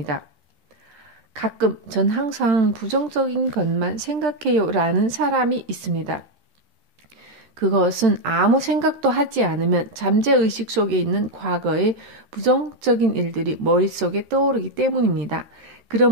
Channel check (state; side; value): late; left; 13 ms